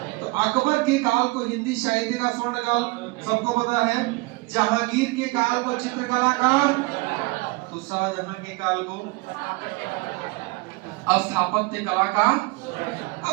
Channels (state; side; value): quieter; left; 24.8 dB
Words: तो अकबर के काल को हिंदी साहित्य का स्वर्ण काल सबको पता है, जहांगीर के काल को चित्रकला का, तो शाहजहां के काल को स्थापत्य कला का।